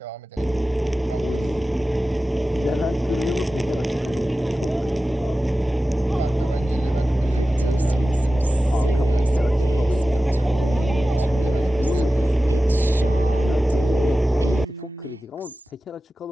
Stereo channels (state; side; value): normal; both; correlation 0.95